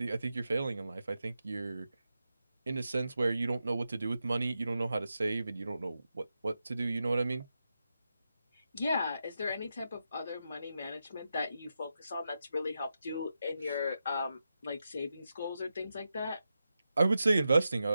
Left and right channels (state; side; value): inverted; both; correlation -0.88